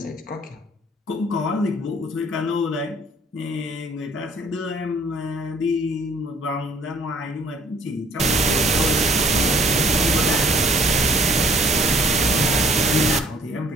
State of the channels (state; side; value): normal; both; correlation 0.58